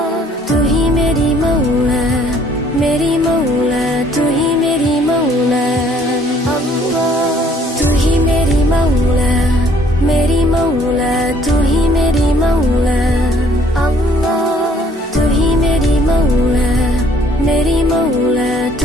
तू ही मेरी मौला, मेरी मौला, तू ही मेरी मौला अल्लाह। तू ही मेरी मौला, मेरी मौला, तू ही मेरी मौला अल्लाह। तू ही मेरी मौला, मेरी मौला,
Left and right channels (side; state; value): both; normal; correlation 0.60